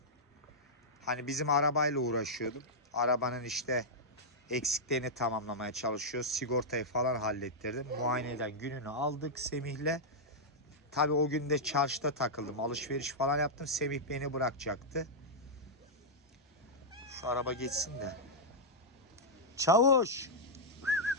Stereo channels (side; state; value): both; normal; correlation -0.07